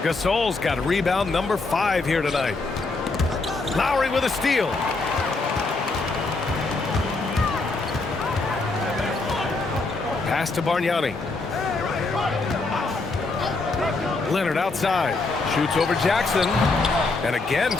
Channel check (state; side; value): quieter; right; 3.6 dB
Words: Gasol's got rebound number 5 here tonight. Lowry with a steal. Pass to Bargnani. Leonard outside. Shoots over Jackson. And again,